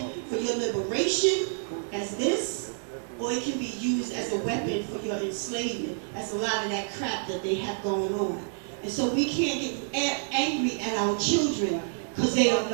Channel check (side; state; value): left; silent; digital silence